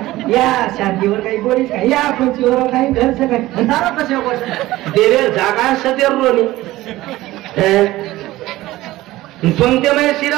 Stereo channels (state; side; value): quieter; left; 17.1 dB